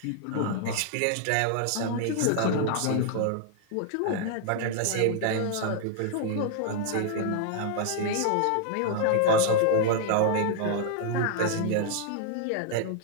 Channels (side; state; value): both; different; correlation 0.00